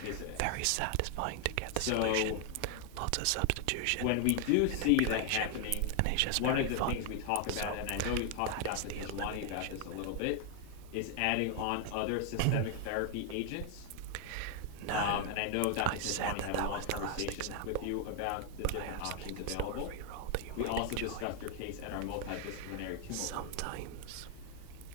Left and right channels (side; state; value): both; different; correlation 0.00